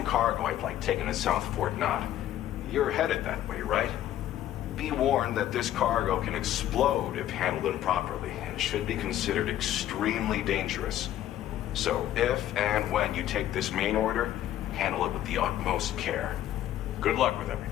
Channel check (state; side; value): quieter; right; 12.5 dB